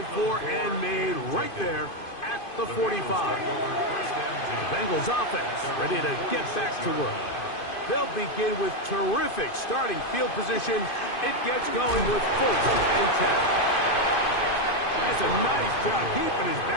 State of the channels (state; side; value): late; right; 2.5 ms